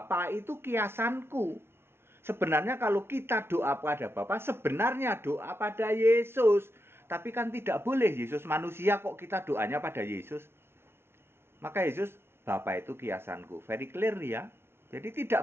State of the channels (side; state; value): left; late; 0.12 ms